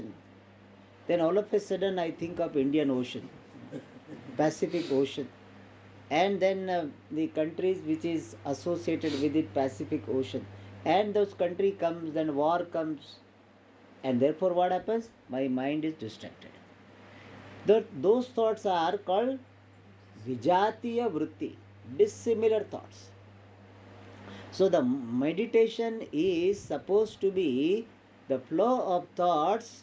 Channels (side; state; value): both; identical; correlation 1.00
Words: then all of a sudden I think of Indian Ocean, Pacific Ocean, and then the countries which is associated with it, Pacific Ocean, and those country comes, then war comes, and therefore what happens? My mind is distracted. Those thoughts are called vijatiya vritti, dissimilar thoughts. So the meditation is supposed to be the flow of thoughts